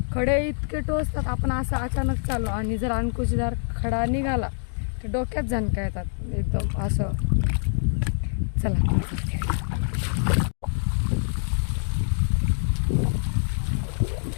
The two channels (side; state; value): right; silent; 62 dB below the other